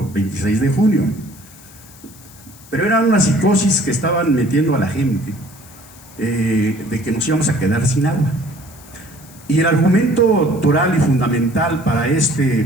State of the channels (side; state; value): left; noise; hiss, 22 dB below the sound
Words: 26 de junio. Pero era una psicosis que estaban metiendo a la gente, de que nos íbamos a quedar sin agua. Y el argumento toral y fundamental para